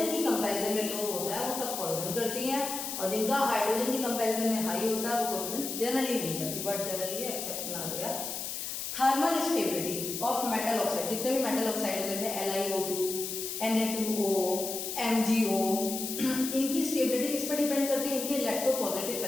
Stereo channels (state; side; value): noise; left; hiss, 5 dB below the sound